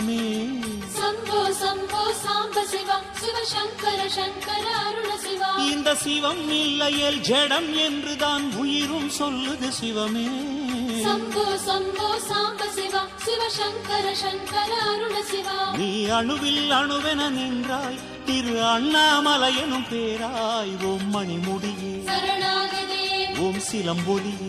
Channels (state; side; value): identical; both; correlation 1.00